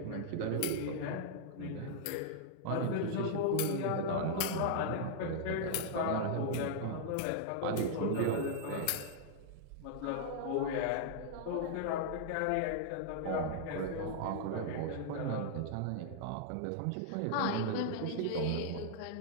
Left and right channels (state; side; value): different; both; correlation -0.01